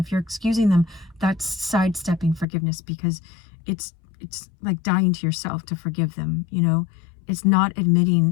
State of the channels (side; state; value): right; drops out; at 2.5 s